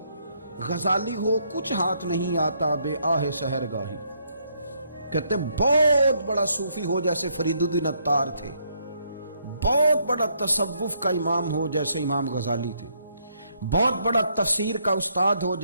غزالی ہو، کچھ ہاتھ نہیں آتا بے آہ سحر گاہی۔ کہتے ہیں بہت بڑا صوفی ہو جیسے فرید الدین عطار تھے، بہت بڑا تصوف کا امام ہو جیسے امام غزالی تھے، بہت بڑا تفسیر کا استاد ہو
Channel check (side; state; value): both; inverted; correlation -0.72